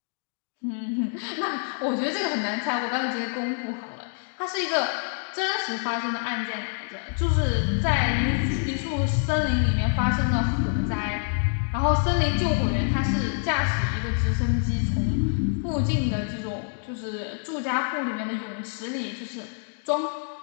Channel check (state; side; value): silent; right; 59 dB below the other